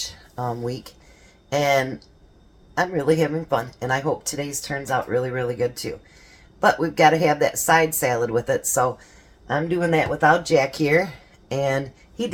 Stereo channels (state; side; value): identical; both; correlation 1.00